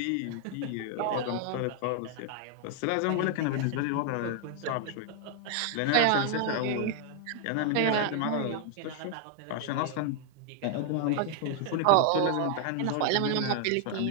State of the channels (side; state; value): both; different; correlation 0.00